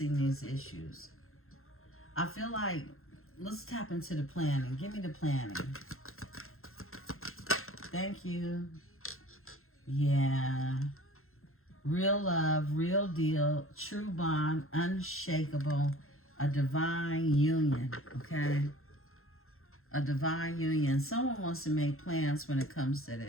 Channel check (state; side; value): late; right; 0.61 ms